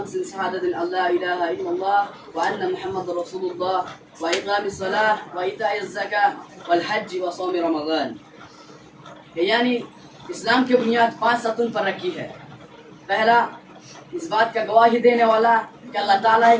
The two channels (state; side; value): identical; both; correlation 1.00